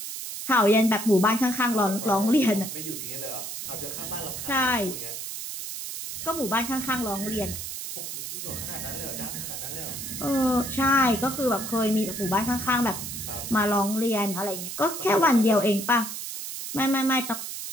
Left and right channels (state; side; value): noise; right; hiss, 7 dB below the sound